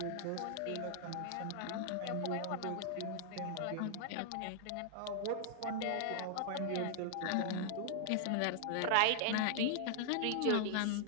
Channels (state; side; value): different; both; correlation 0.00